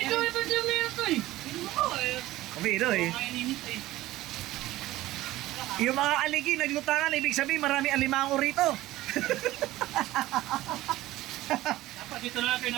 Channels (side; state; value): left; quieter; 16.6 dB